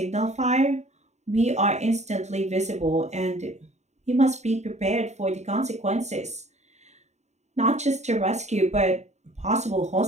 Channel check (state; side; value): late; left; 0.33 ms